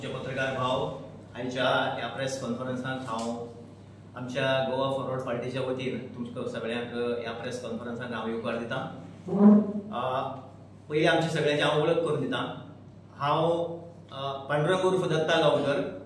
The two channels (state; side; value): identical; both; correlation 1.00